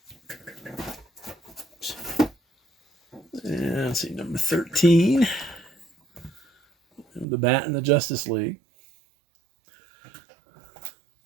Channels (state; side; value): drops out; left; at 7.2 s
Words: And let's see, number 13. The Bat in the Justice League.